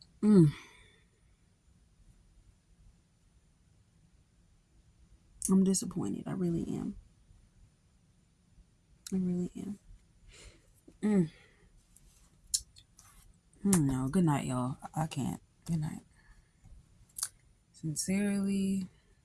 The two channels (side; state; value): both; identical; correlation 1.00